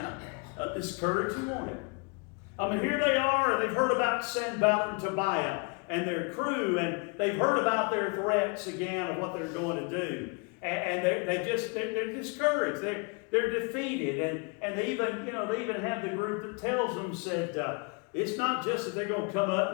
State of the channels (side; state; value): right; quieter; 33.2 dB